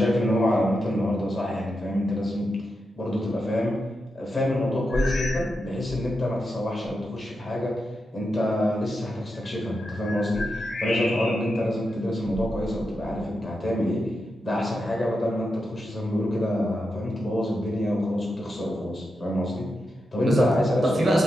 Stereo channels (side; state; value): both; normal; correlation 0.87